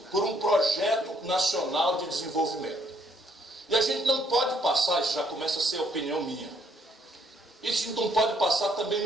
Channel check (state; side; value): normal; both; correlation 0.68